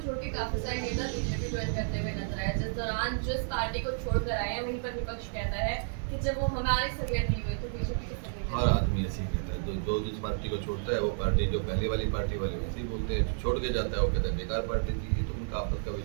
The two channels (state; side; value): silent; left; digital silence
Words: छोड़ के काफी सारे नेता बीजेपी ज्वाइन करते हुए नजर आए। जिस दौरान जिस पार्टी को छोड़कर आए हैं, वहीं पर विपक्ष कहता है कि जब वो हमारी सरियत नहीं हुई तो बीजेपी की सरियत। हर आदमी ऐसे ही कहता है, जो जिस पार्टी को छोड़ता है वो पार्टी, जो पहले वाली पार्टी वाले वैसे ही बोलते हैं। छोड़ के जाता है वो कहता है बेकार पार्टी थी। ये तो उनका आपस का